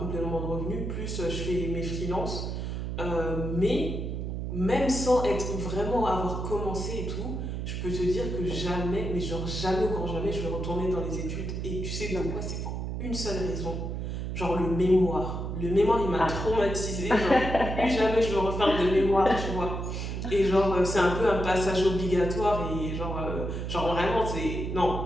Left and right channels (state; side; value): noise; right; hum, 4 dB below the sound